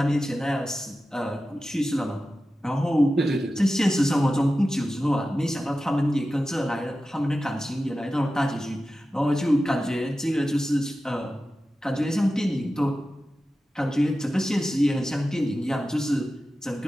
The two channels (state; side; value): normal; both; correlation 0.93